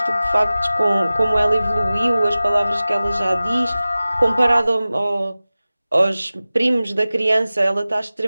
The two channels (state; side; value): inverted; both; correlation -0.96